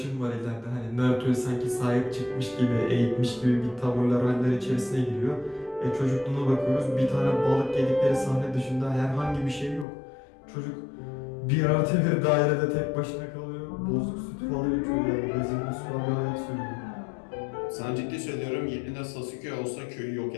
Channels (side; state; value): right; drops out; at 9.9 s